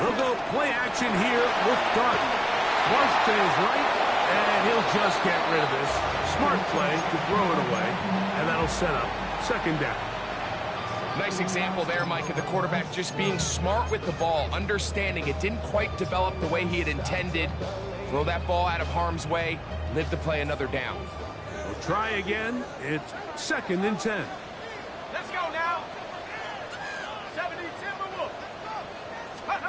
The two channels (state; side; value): identical; both; correlation 1.00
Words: go play action here with Garden. Flush to his right. And he'll just get rid of this. Smart play to throw it away. And that'll set up second down. Nice example there, Mike, of the quarterback just being smart with the ball, understanding it didn't quite develop the way he had intended. Throw that ball out of harm's way, live to play another down. We'll try again. It's second and 10. Let's go now. 70 Timberwolves.